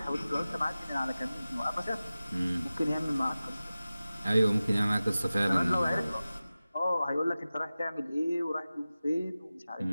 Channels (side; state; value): both; inverted; correlation -0.96